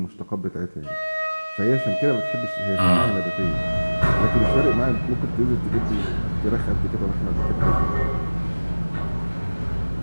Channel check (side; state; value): both; inverted; correlation -1.00